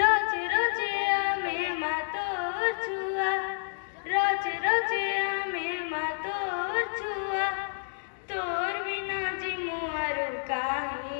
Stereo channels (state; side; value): silent; right; digital silence